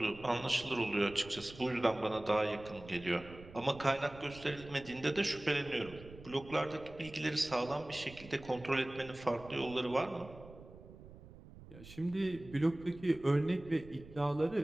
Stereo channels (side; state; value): right; noise; rumble, 17 dB below the sound